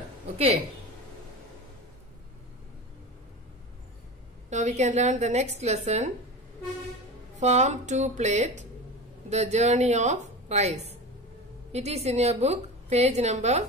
Okay. Now we can learn the next lesson. Form 2 plate, The Journey of Rice. It is in your book, page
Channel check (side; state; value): both; normal; correlation 0.29